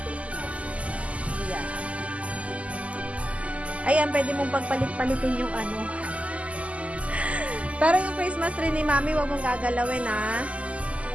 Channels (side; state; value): left; late; 0.066 ms